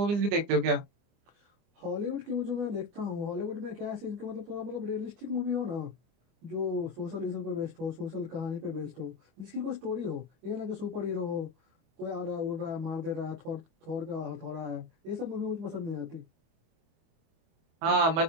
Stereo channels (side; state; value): left; late; 25 ms